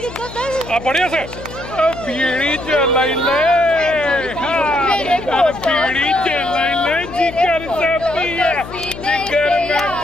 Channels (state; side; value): noise; left; hum, 13 dB below the sound